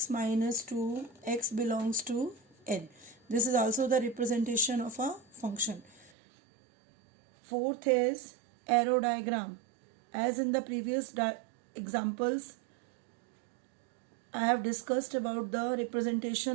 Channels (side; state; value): left; drops out; at 6.1 s